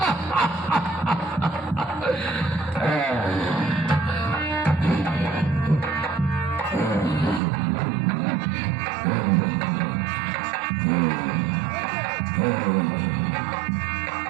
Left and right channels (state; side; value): drops out; left; at 7.4 s